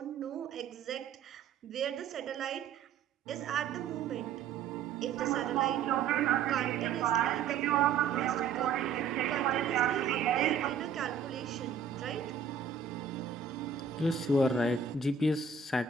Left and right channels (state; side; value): quieter; left; 6.5 dB